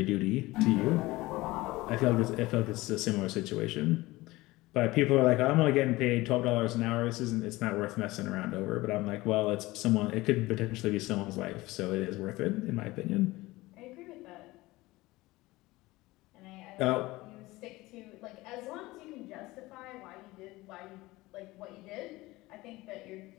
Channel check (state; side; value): quieter; right; 19.8 dB